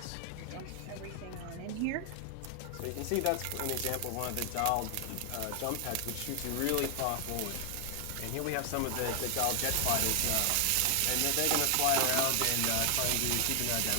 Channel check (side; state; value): both; different; correlation 0.00